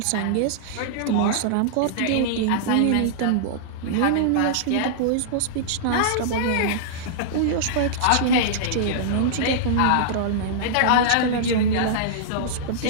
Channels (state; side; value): different; both; correlation -0.02